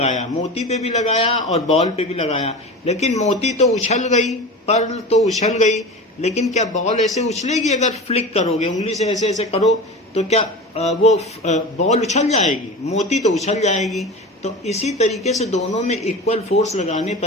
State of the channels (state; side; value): normal; both; correlation 0.31